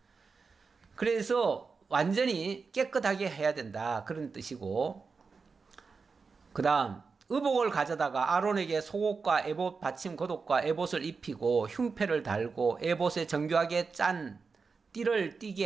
그래서 완전히 깨끗하게 해야 된다 그런 뜻이고 그 다음 의복을 가져다가 아론에게 속옷과 에봇 받침 겉옷과 에봇을 입히고 흉패를 달고 에봇에 정교하게 짠 띠를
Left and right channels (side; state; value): left; quieter; 4.8 dB